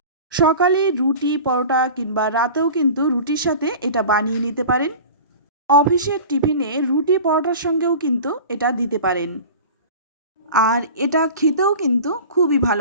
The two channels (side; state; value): both; inverted; correlation -0.37